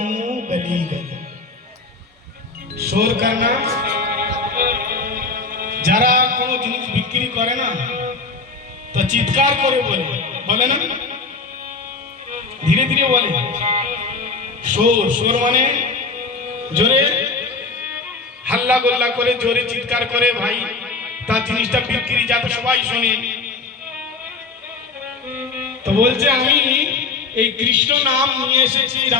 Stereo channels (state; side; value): quieter; right; 4.1 dB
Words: गली गली। शोर करना, যারা কোনো জিনিস বিক্রি করে না তো চিৎকার করে বলে না, ধীরে ধীরে বলে। শোর, শোর মানে জোরে হাল্লা গোল্লা করে জোরে চিৎকার করে ভাই তার জিনিসটা বিক্রি যাতে সবাই শোনে। তো বলছে আমি এই কৃষ্ণ নাম নিয়ে এসেছি,